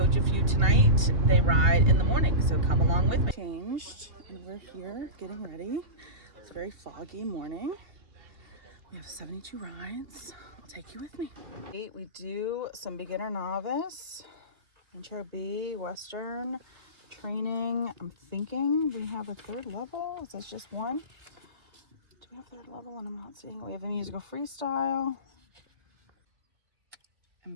a few tonight. They ride in the morning, so come along with me. Changed, and we're here getting ready. It's a very foggy morning. We have 72 rides. I'll take you with me. We do some beginner novice, intro B, Western, training. I'm thinking we have a third level. Is that just one? Do we have third level? And I'm not seeing it. We have a musical freestyle.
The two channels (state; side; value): late; left; 2.7 ms